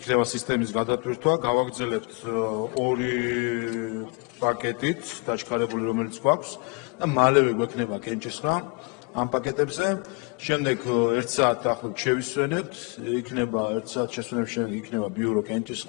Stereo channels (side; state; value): right; quieter; 30.1 dB